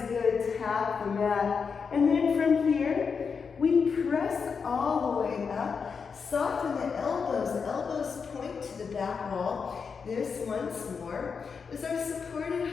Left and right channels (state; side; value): quieter; right; 5.7 dB